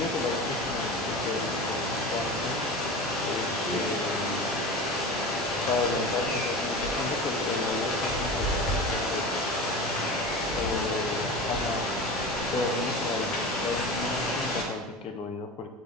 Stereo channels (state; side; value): normal; both; correlation 0.31